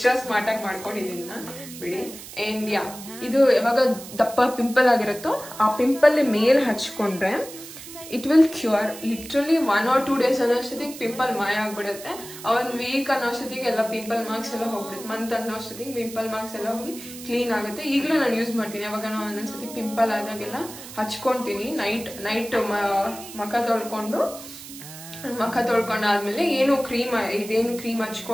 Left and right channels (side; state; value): right; noise; hiss, 14 dB below the sound